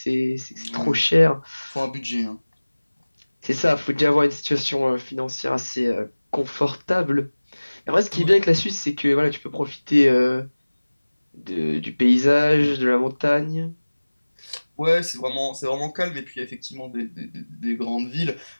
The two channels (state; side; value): inverted; both; correlation -1.00